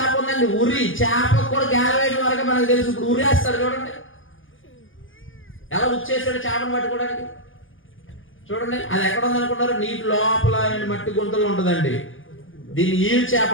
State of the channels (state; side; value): late; right; 0.58 ms